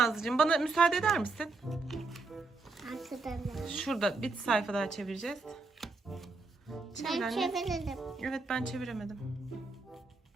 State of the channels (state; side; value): quieter; left; 3.7 dB